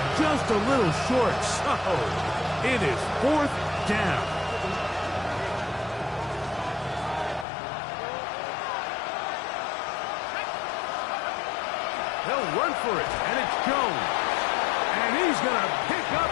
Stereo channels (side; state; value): right; drops out; at 7.5 s